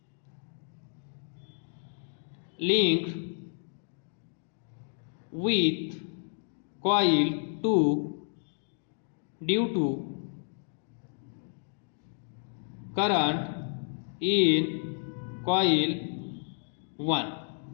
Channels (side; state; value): right; silent; 57 dB below the other